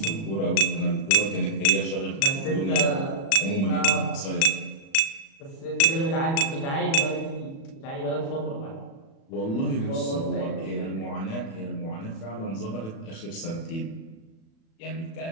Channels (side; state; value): right; late; 36 ms